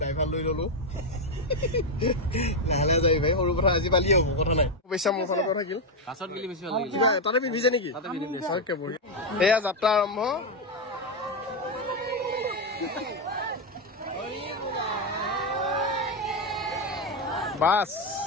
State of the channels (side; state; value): both; normal; correlation 0.05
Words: ড্ৰাইভাৰ লৈ ললো লাহে লাহে যাবি ভাই সৰু কথা আজি পালি হ'ব কথা নাই পইচা মোৰ ফালৰ পৰা থাকিল তাতে পিন্ধিছে নেকি এয়া যাত্ৰা আৰম্ভ বাছ